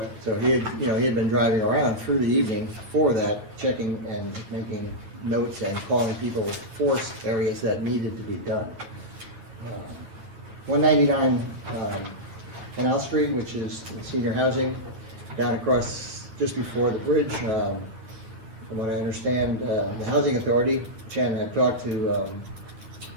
So he had been driving around through the evening for that, checking and making notes and calling people for areas that needed to be done. 199 Canal Street, which is senior housing, down across just before the bridge. From what I understand, the Housing Authority, Chan had talked to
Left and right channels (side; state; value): left; late; 9.0 ms